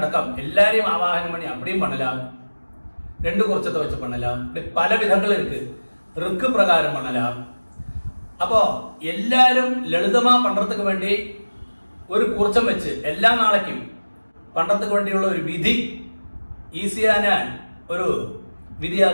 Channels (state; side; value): inverted; both; correlation -1.00